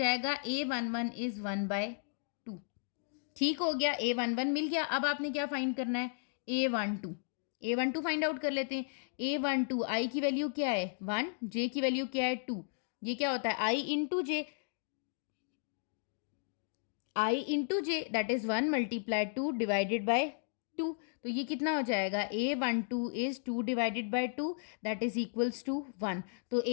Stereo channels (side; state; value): right; silent; digital silence